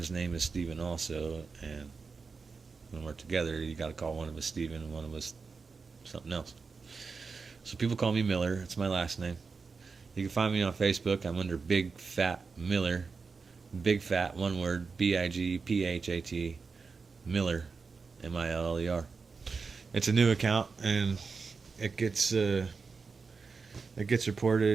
name is Steven also, and when we're together, you got to call one of us Steven and one of us something else. So people call me Miller. It's my last name. You can find me on Facebook. I'm under Big Fat Miller. Big Fat, one word, Bigphat, Miller, Miller. It's a new account, and it gets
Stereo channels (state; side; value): quieter; left; 4.8 dB